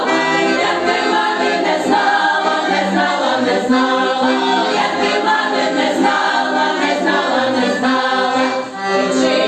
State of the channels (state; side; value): identical; both; correlation 1.00